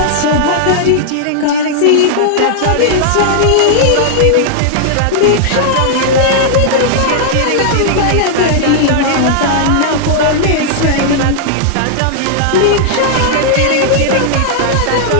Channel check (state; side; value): different; both; correlation -0.01